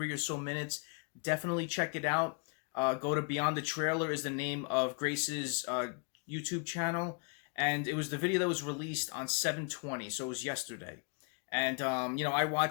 or so minutes, definitely check it out. Go to Beyond the Trailer is the name of Grace's YouTube channel, and it was the video that was released on 7/20, so it was yesterday. And, I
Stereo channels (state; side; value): quieter; right; 37.7 dB